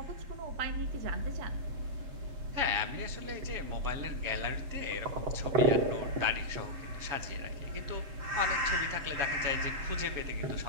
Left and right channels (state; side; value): late; left; 7.2 ms